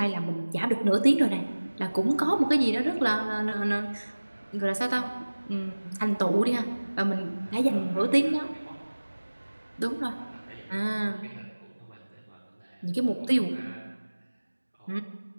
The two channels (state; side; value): inverted; both; correlation -1.00